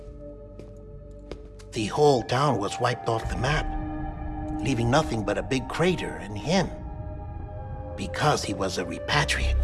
The whole town was wiped off the map, leaving nothing but a big crater and him. Because he was a repatriate.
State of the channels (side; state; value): both; identical; correlation 1.00